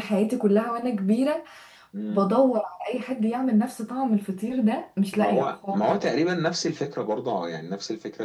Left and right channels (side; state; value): both; identical; correlation 1.00